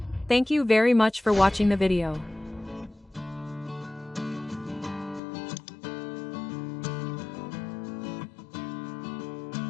Thank you very much for watching the video.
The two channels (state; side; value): drops out; right; at 5.2 s